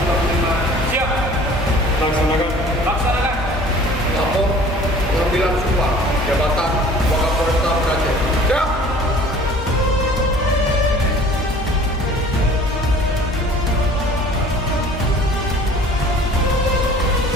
Siap! Laksanakan. Laksanakan. Lapor pengambilan sumpah jabatan Wakapolresta Banda Aceh. Siap!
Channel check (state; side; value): normal; both; correlation 0.48